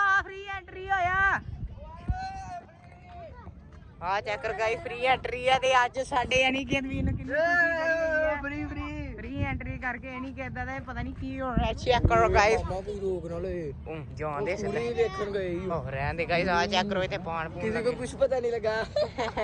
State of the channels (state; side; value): identical; both; correlation 1.00